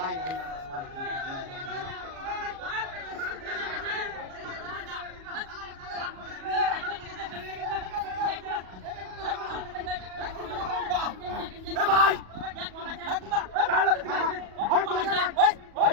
লাই না ভাই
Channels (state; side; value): late; left; 37 ms